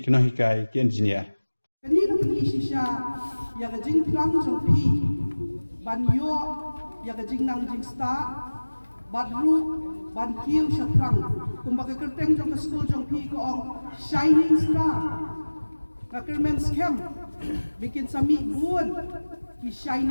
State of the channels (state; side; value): inverted; both; correlation -1.00